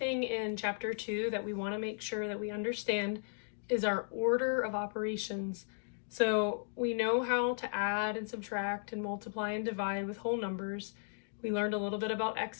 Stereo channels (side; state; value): right; silent; digital silence